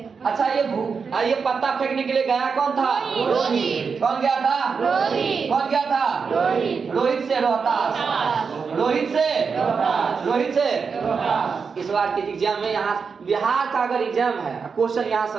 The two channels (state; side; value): quieter; left; 5.6 dB